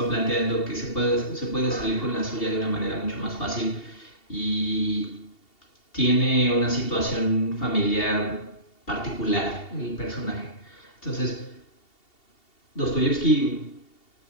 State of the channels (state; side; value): late; right; 2.7 ms